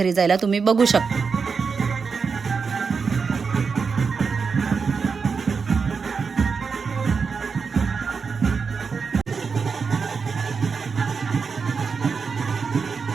जायला, तुम्ही बघू शकता.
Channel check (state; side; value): quieter; left; 5.3 dB